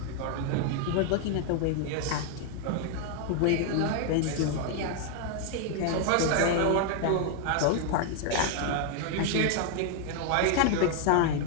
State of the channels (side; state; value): both; different; correlation 0.00